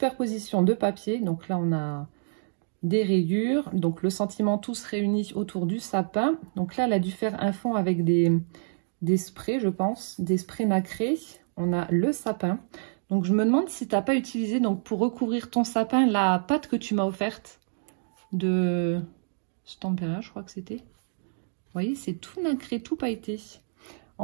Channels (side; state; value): left; silent; digital silence